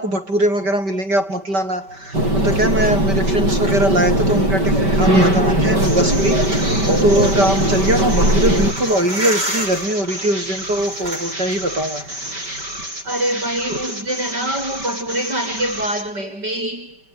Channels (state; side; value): late; left; 5.2 ms